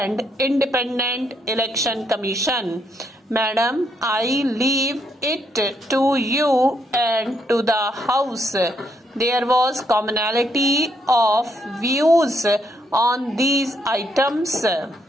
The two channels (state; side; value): normal; both; correlation 0.75